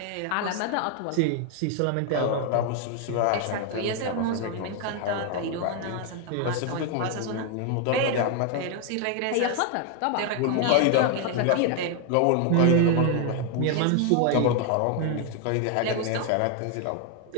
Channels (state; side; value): different; both; correlation 0.01